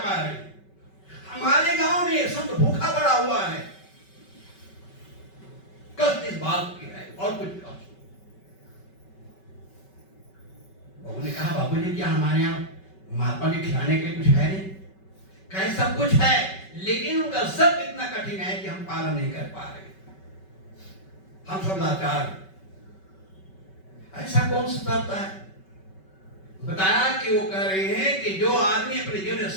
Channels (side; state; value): right; late; 5.3 ms